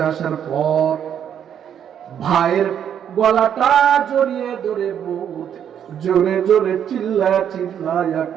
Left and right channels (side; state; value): left; quieter; 9.0 dB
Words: আসার পর ভাইয়ের গলাটা জড়িয়ে ধরে বুক জোরে জোরে চিল্লায়া